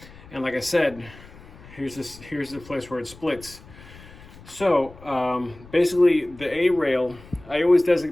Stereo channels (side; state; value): left; noise; rumble, 20 dB below the sound